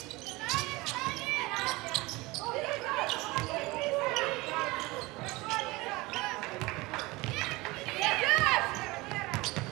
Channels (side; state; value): left; quieter; 22.2 dB